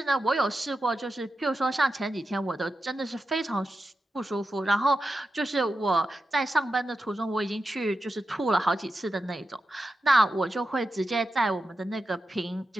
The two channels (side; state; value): both; normal; correlation 0.90